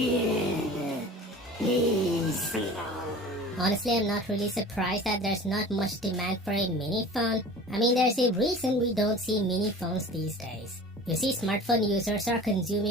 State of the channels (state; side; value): normal; both; correlation 0.40